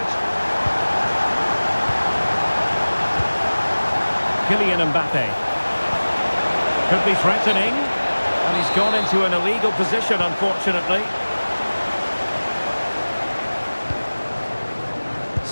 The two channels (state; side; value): inverted; both; correlation -1.00